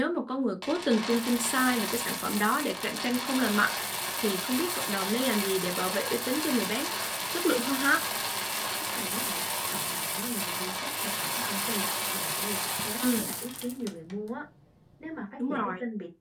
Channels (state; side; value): identical; both; correlation 1.00